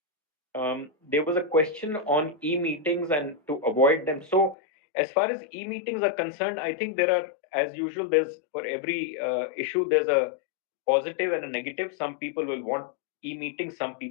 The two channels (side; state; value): right; drops out; at 4.5 s